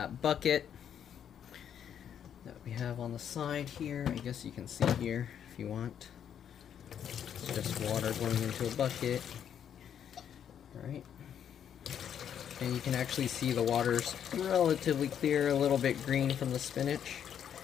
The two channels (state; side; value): quieter; right; 9.0 dB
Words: bucket that we have on the side here. I guess you can see here if you want. It's just water going into a bucket. Alright. And you can actually see the water's relatively clear, a little bit green from the spinach.